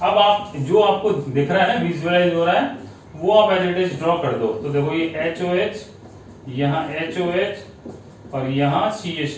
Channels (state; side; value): identical; both; correlation 1.00